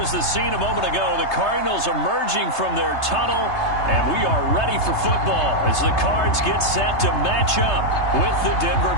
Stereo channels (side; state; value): right; late; 3.3 ms